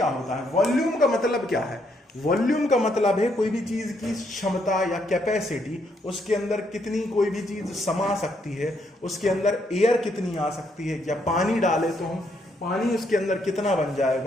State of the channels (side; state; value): both; normal; correlation 0.74